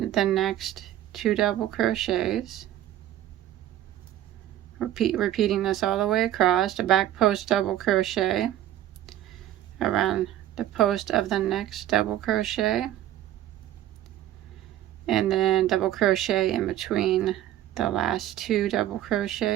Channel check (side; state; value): left; quieter; 12.8 dB